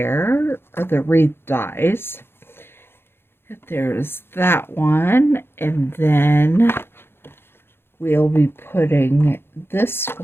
or the wreath dies. There's that one, and then we'll be putting this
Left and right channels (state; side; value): late; right; 0.11 ms